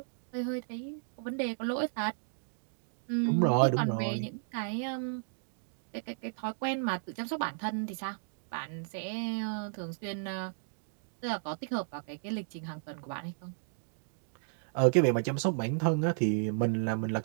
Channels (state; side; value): silent; left; digital silence